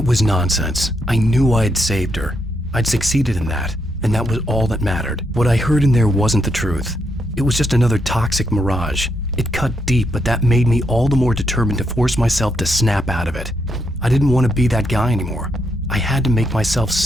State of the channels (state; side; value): normal; both; correlation 0.79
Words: was nonsense. I knew I had saved her. I'd succeeded in that, and that was all that mattered. What I heard in there wasn't the truth. It was just another toxic mirage. It cut deep, but that made me all the more determined to force myself to snap out of it. I didn't want to be that guy anymore. I had to make myself